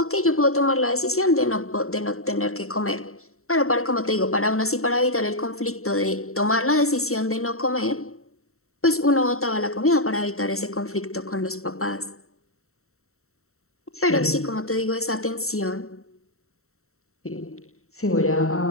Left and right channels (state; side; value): late; right; 0.63 ms